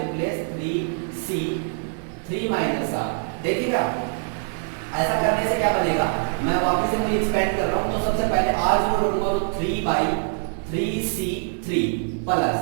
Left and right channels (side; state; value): left; silent; 61 dB below the other